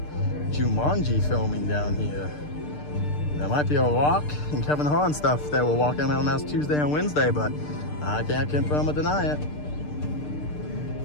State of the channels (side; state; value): right; late; 6.7 ms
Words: Jumanji filming down here. There might be a Rock and Kevin Hart and stuff that were walking around last Tuesday and Wednesday, but I can't confirm or deny it.